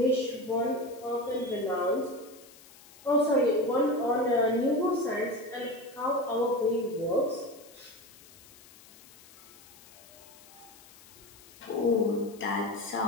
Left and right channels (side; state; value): left; noise; hiss, 22 dB below the sound